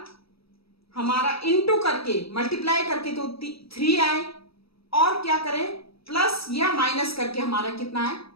इनटू करके, मल्टीप्लाई करके तो 3 आए, और क्या करें, प्लस या माइनस करके हमारा कितना है,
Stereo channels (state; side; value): late; right; 0.76 ms